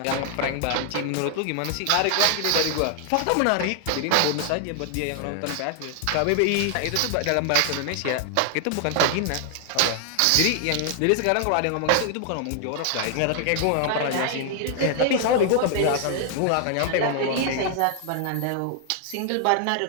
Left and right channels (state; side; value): different; both; correlation 0.00